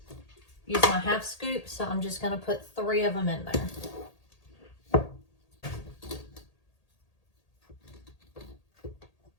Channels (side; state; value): right; late; 1.8 ms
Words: use my half scoop, so I'm just going to put 3 of them in there.